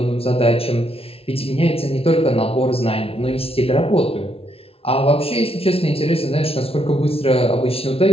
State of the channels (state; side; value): late; right; 0.28 ms